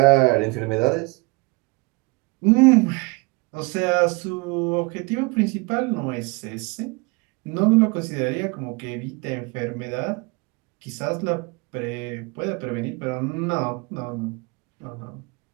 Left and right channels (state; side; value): quieter; left; 27.3 dB